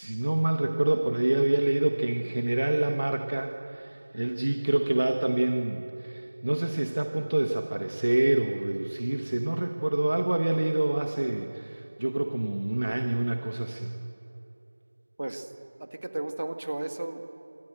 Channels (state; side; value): inverted; both; correlation -1.00